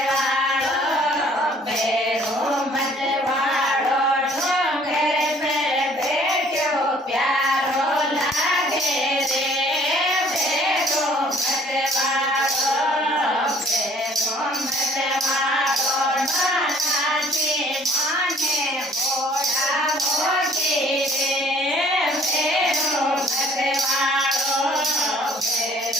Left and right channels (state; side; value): normal; both; correlation 0.57